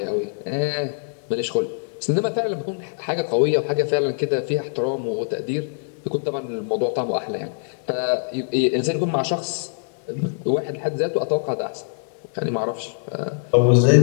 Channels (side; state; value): right; silent; digital silence